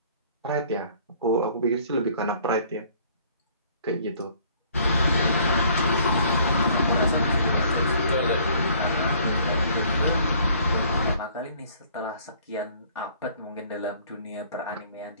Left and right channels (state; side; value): inverted; both; correlation -0.57